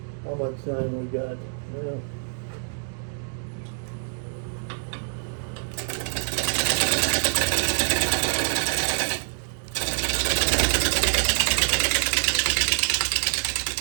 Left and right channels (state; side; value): silent; left; 57 dB below the other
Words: How much time we got? Yeah.